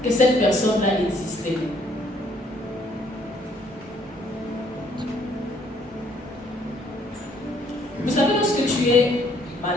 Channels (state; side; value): normal; both; correlation 0.65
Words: que cette personne-là existait. Vous savez, lorsque tu es